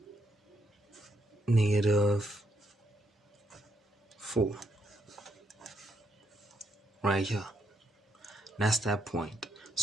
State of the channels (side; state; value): both; normal; correlation 0.76